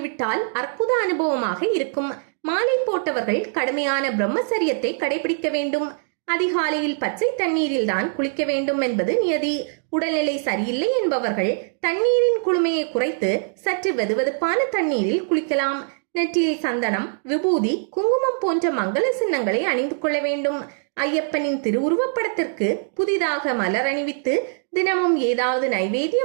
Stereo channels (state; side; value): silent; left; digital silence